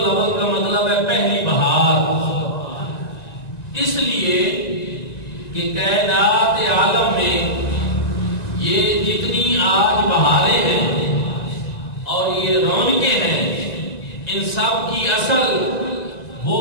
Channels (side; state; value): right; late; 1.9 ms